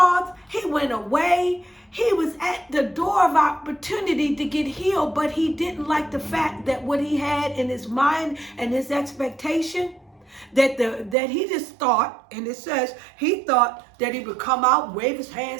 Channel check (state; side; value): drops out; left; at 11.2 s